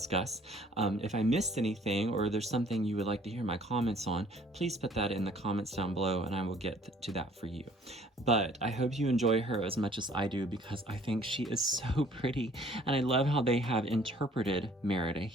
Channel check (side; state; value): both; normal; correlation 0.57